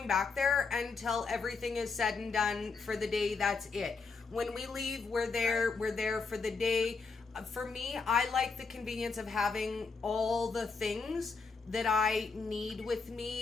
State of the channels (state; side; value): quieter; right; 4.6 dB